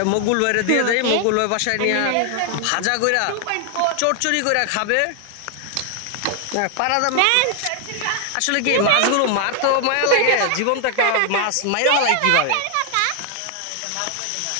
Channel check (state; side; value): different; both; correlation 0.00